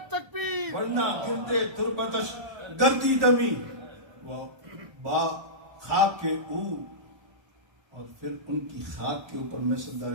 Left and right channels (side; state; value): left; late; 1.3 ms